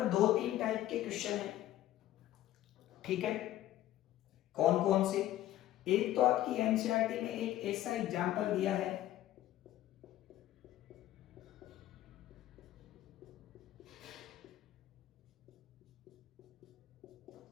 2-3 टाइप के क्वेश्चन है, ठीक है। कौन कौन से? एक तो आपकी एनसीईआरटी में एक ऐसा एग्जांपल दिया है,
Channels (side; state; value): right; quieter; 13.9 dB